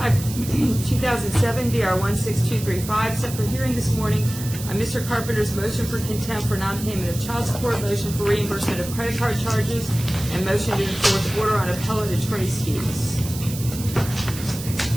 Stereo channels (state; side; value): noise; right; hiss, 11 dB below the sound